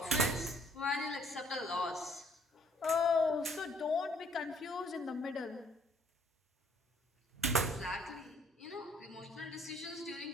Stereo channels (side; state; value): both; normal; correlation 0.61